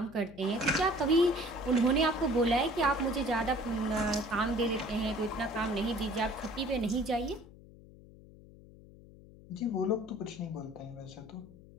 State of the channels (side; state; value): left; noise; hum, 21 dB below the sound